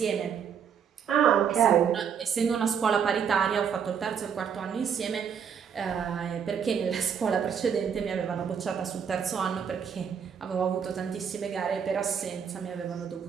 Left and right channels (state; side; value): quieter; left; 7.5 dB